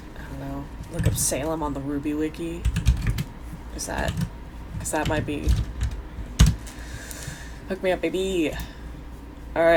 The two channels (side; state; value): both; identical; correlation 1.00